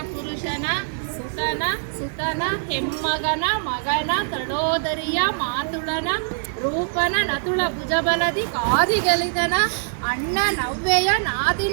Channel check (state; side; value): silent; left; digital silence